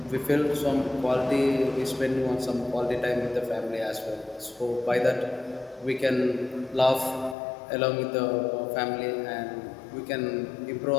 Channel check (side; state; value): right; drops out; at 7.4 s